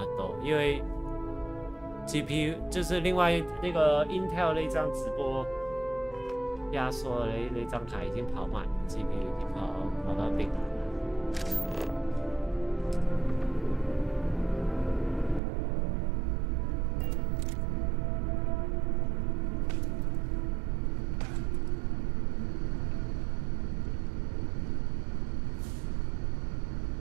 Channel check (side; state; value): left; drops out; at 15.4 s